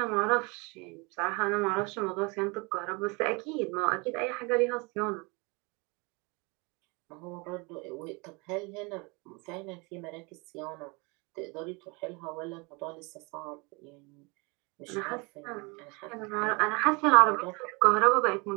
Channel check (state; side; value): quieter; left; 28.7 dB